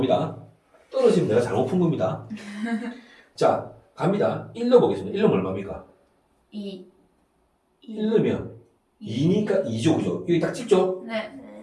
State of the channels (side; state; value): both; identical; correlation 1.00